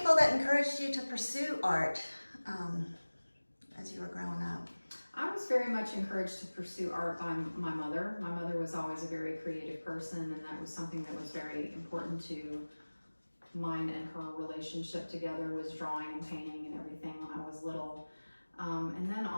that encouraged you to pursue art as you were growing up? I was very much encouraged to pursue art by my mother. My mother was always a very creative person, and that was something that was very important to mine and her relationship together, was drawing and painting and everything when I was little. And then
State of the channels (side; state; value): both; inverted; correlation -1.00